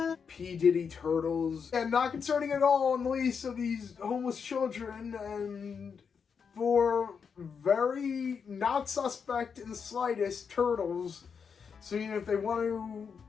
P. Diddy Turtles. And not concerning at all on the least of these homeless children, and for very not suspect in the slightest Turtles, seeing if they want to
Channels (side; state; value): right; quieter; 6.3 dB